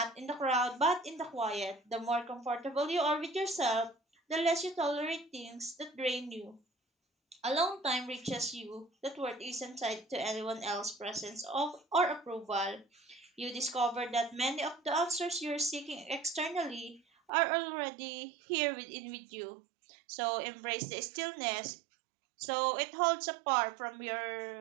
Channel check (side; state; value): left; drops out; at 17.3 s